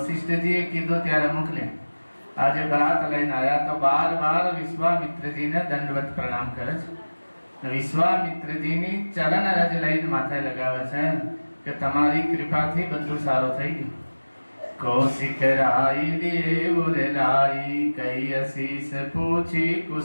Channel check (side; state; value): both; inverted; correlation -1.00